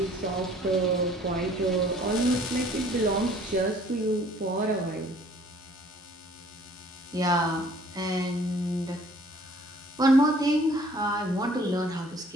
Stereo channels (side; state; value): both; normal; correlation 0.56